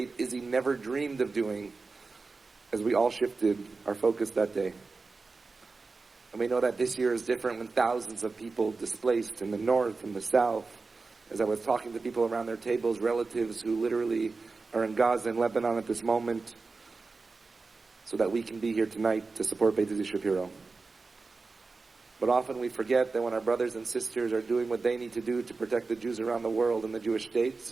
Issie never dreamed of doing, as we all shifted our focus that day. And we know that this year is different when thousands of people displaced in the north and the south. As I was talking to people around their tables, relatives who literally are in Gaza and Lebanon at this moment, so that we can be here tonight to support Beit Issie Shapiro. But often we forget that when our brothers and sisters are doing what they need to do to protect the Jews around the world and the Jewish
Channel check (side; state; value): left; quieter; 4.0 dB